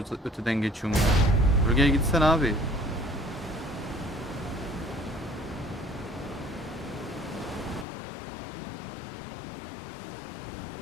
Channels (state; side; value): drops out; right; at 7.9 s